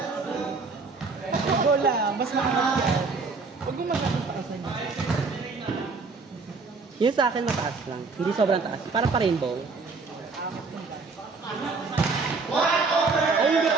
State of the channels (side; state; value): left; quieter; 4.3 dB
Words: Go lang, mas makakapit yan. Huwag mo masyadong taasan niya. Yun sa akin mataas lang, hindi sobrang taas. Parang pa-rainbow. Ay, hindi